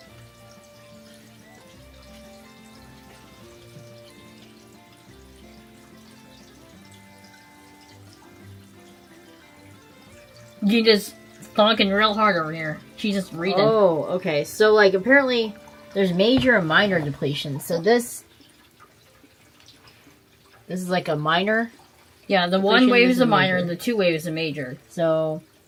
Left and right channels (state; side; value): identical; both; correlation 1.00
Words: You just talking real hard over here. She's just reading. Oh, okay. So, like, apparently there's major and minor depletion. So this is like a minor. Yeah, the depletion, one wave this is a is minor major. and the 2 wave is a major. So,